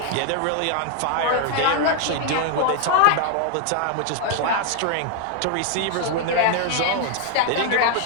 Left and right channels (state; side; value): different; both; correlation 0.00